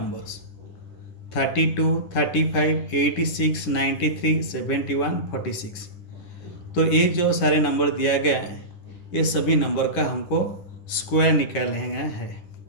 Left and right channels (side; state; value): right; late; 10 ms